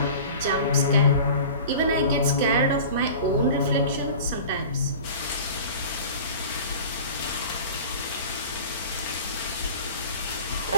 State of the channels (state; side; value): inverted; both; correlation -0.39